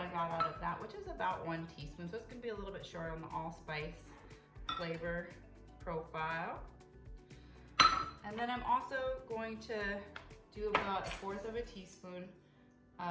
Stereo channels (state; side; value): identical; both; correlation 1.00